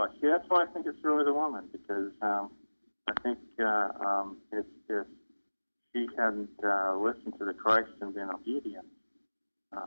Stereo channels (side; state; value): both; inverted; correlation -1.00